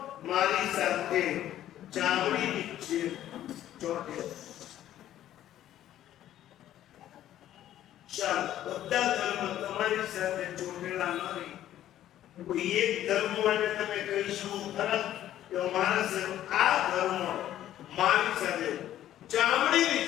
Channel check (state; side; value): quieter; right; 12.3 dB